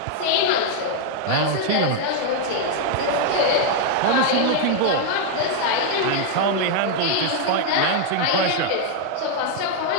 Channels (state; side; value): different; both; correlation 0.00